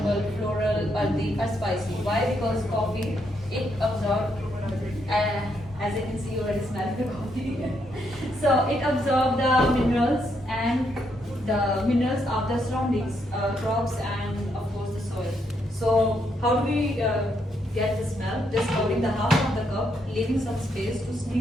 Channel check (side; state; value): both; normal; correlation 0.76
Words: floral, earthy, or spicy. Why? Because coffee, it absorbs, as you can see, you already smell the coffee. So it absorbs the minerals and the minerals of the surroundings, crops and of course the soil. So how do we get the smell? Just holding the half of the cup, leaving some space to